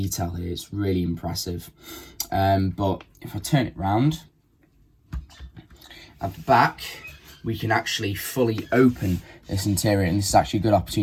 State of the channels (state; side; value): identical; both; correlation 1.00